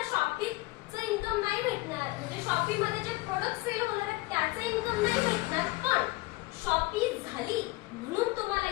शॉपीचं इन्कम नाही भेटणार. म्हणजे शॉपीमध्ये जे प्रोडक्ट सेल होणार आहेत त्याचं इन्कम नाही भेटणार. पण शॉपी झाली म्हणून तुम्हाला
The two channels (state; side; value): quieter; right; 21.6 dB